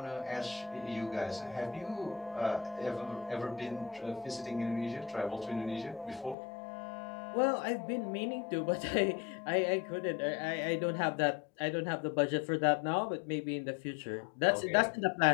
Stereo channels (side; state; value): right; drops out; at 6.4 s